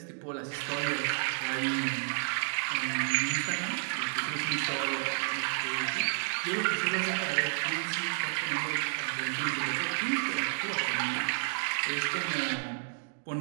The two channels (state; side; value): silent; left; digital silence